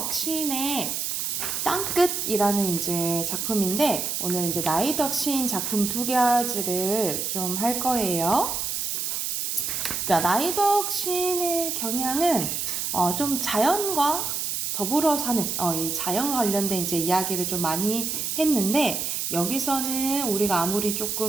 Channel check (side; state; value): right; noise; hiss, 2 dB below the sound